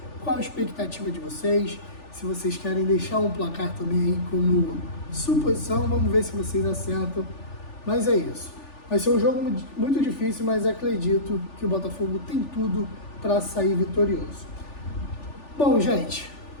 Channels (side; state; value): right; late; 3.4 ms